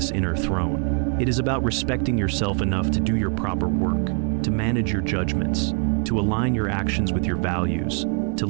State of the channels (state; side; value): quieter; left; 39.1 dB